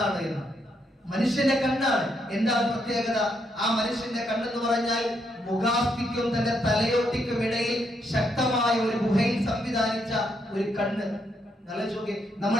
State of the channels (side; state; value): both; normal; correlation 0.77